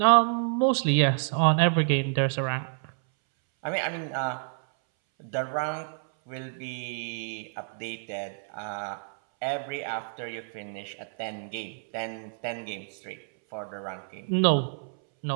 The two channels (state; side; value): silent; left; 59 dB below the other